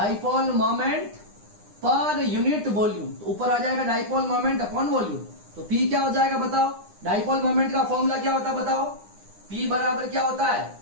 moment per unit volume, तो ऊपर आ जाएगा डाइपोल मोमेंट अपॉन वॉल्यूम। तो P क्या हो जाएगा बताओ, डाइपोल मोमेंट का फॉर्मूला क्या होता है बताओ, P बराबर क्या होता है,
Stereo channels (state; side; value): late; left; 9.8 ms